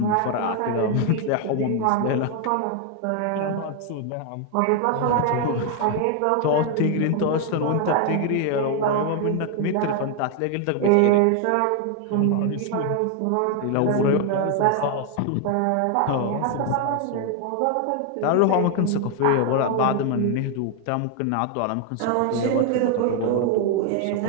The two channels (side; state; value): both; different; correlation 0.00